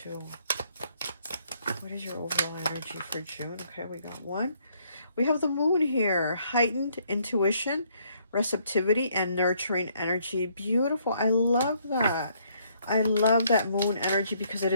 2. What is your overall energy for June? Okay, we got 1. We have the moon here. Heightened intuition, receptivity, and nurturing energy. Beautiful. I love that. I love that moon energy because it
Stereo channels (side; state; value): both; inverted; correlation -0.68